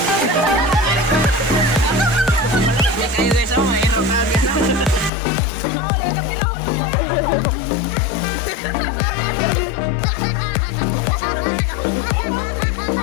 Kayo guys, oh, mahirap na guys.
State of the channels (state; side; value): drops out; right; at 5.1 s